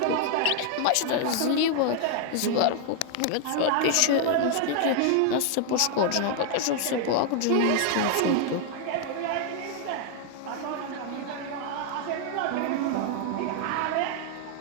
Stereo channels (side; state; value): both; different; correlation 0.00